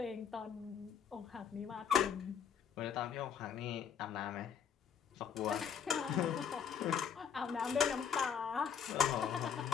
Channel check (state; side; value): quieter; right; 7.7 dB